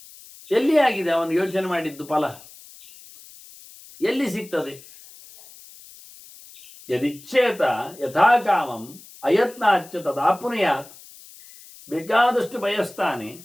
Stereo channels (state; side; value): noise; left; hiss, 21 dB below the sound